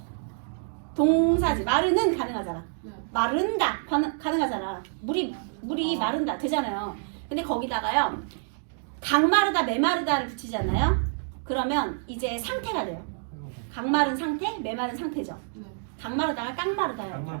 동사지. 마르는 가능하잖아. 마른다 가능하잖아. 물이 마른다 되잖아요. 근데 거기다가요, 강마르다, 메마르다를 붙이잖아요. 그러면 이제 상태가 돼요. 강마른 상태, 메마른 상태죠. 강마르다가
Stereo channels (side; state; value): left; silent; digital silence